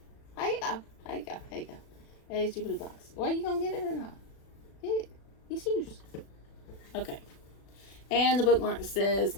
There you go. There you go. There you go. There's your blue box. Well, you gonna get it or not? Get it. It's yours. Okay. And the bookmark says,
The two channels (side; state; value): right; late; 36 ms